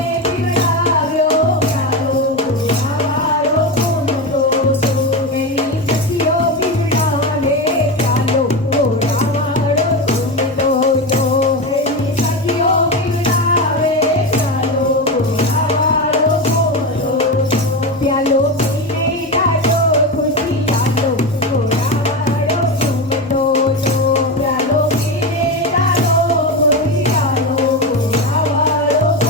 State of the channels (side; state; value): both; normal; correlation 0.17